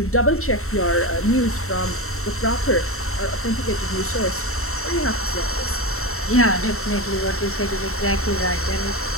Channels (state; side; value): late; right; 0.63 ms